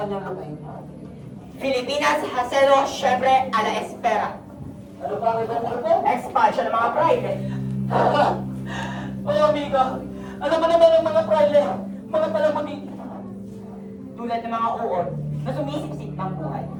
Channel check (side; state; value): both; identical; correlation 1.00